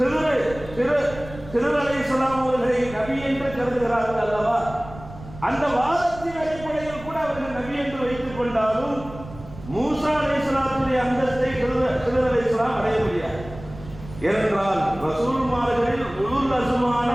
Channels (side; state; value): right; noise; rumble, 15 dB below the sound